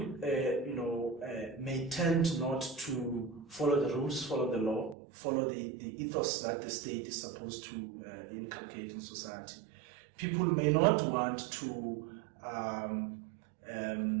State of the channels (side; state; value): left; drops out; at 5.0 s